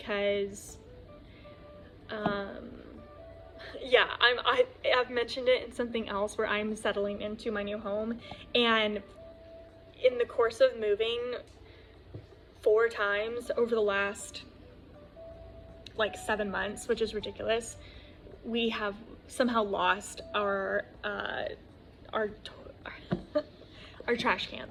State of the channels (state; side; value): identical; both; correlation 1.00